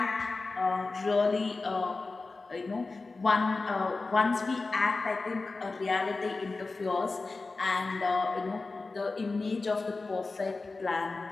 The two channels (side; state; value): right; quieter; 3.7 dB